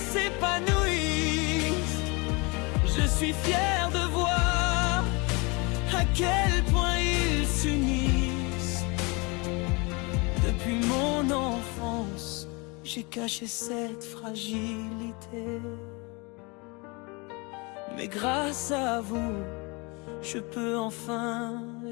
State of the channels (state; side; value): quieter; right; 28.3 dB